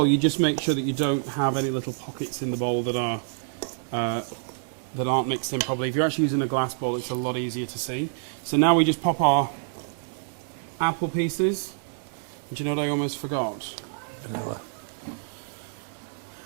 you just make sure that you don't have any little pockets in the bowl that aren't mixed in properly. If you're actually using a glass bowl, it's a lot easier to see. So now we just pop our apple pieces. Do you know what I almost forgot? Vanilla.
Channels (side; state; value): left; silent; digital silence